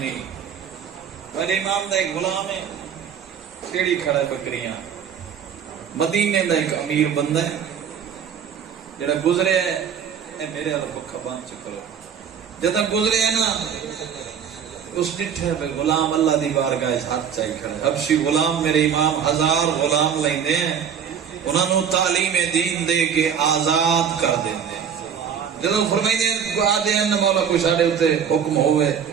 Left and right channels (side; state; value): left; quieter; 7.7 dB